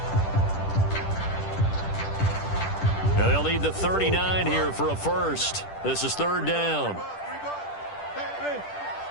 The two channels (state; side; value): late; right; 10 ms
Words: Now they'll need the 39 here for a first. This is 3rd down.